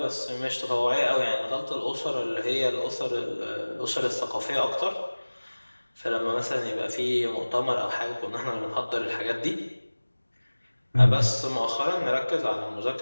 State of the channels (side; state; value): both; inverted; correlation -1.00